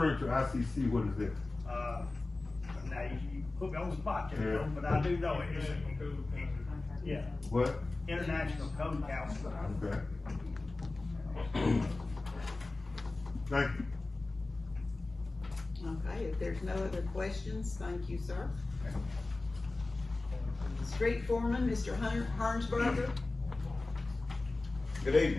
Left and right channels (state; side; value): quieter; right; 3.2 dB